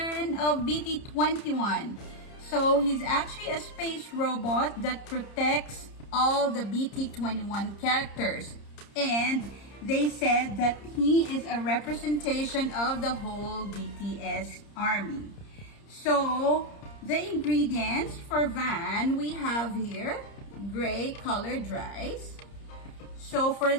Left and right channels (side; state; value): right; late; 30 ms